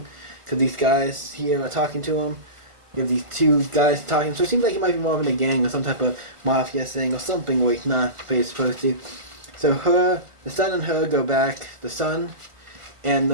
because these guys here are talking to him. You have these two guys talking, so it seems like he might be involved in a gang or some type of mafia thing or something where he's not, but he's supposed to. So the son and her go back, the son, and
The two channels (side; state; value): left; late; 1.4 ms